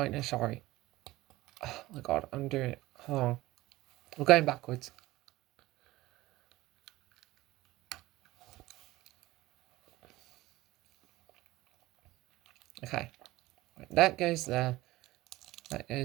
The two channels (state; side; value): quieter; left; 18.2 dB